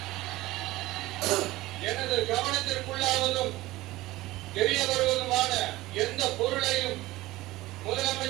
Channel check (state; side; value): quieter; left; 18.2 dB